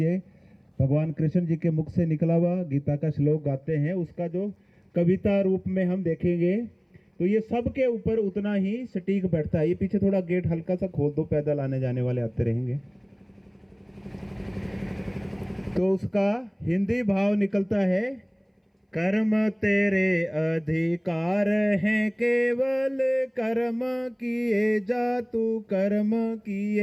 भगवान कृष्ण जी के मुख से निकला हुआ गीता का श्लोक गाते हैं। उसका जो कविता रूप में हम देखेंगे तो ये सबके ऊपर उतना ही सटीक बैठता है। ये पीछे थोड़ा गेट हल्का सा खोल दो, पैदल आने जाने वाले आते रहेंगे। तो उसका हिंदी भाव निकलता है, कर्म तेरे अधिकार हैं केवल, कर्म किए जा तू कर्म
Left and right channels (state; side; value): identical; both; correlation 1.00